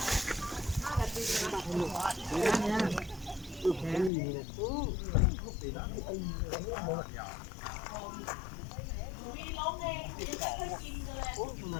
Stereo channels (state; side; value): drops out; right; at 4.1 s